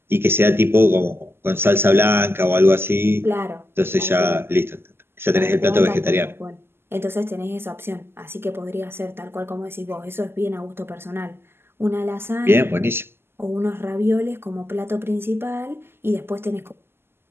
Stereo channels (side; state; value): left; late; 0.12 ms